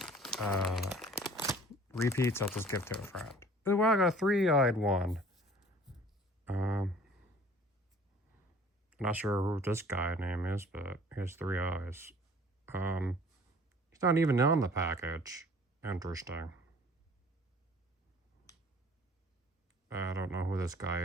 repeats, I'll just give to a friend. Oh, wow, I got a 3-eyed one. Not sure who this guy name is, but he has 3 eyes. He's not even on the package. Interesting. I don't know who this guy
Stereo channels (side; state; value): both; normal; correlation 0.50